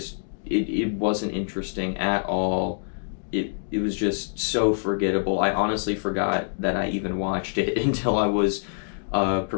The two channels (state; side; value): silent; right; digital silence